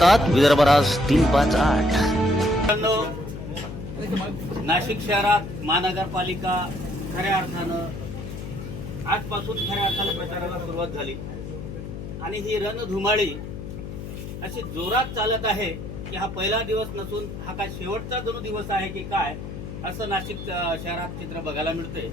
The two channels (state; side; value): noise; left; hum, 8 dB below the sound